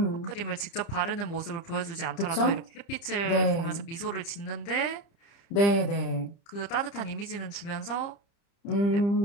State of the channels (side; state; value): right; late; 30 ms